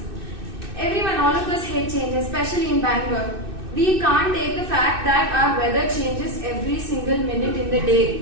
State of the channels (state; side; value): late; left; 2.6 ms